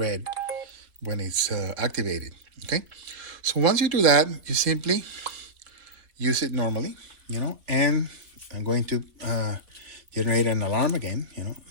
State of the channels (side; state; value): left; late; 3.5 ms